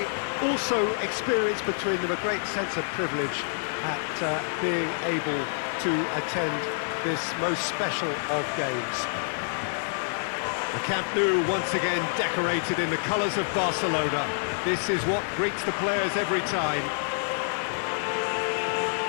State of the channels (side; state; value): right; silent; 60 dB below the other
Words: also experience between them a great sense of privilege at being able to attend this most special of games. The Camp Nou once again decorated in the colours of Barcelona. This is what greets the players every time.